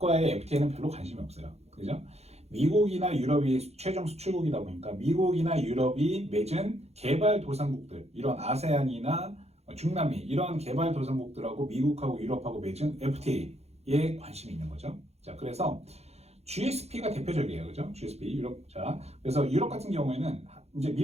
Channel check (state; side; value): late; left; 0.31 ms